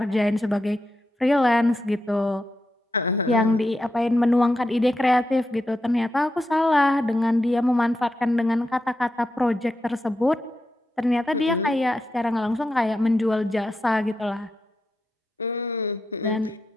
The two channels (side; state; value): both; normal; correlation 0.86